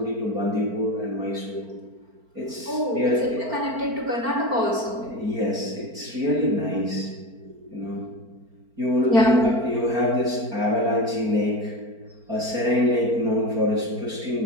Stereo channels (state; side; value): late; left; 4.4 ms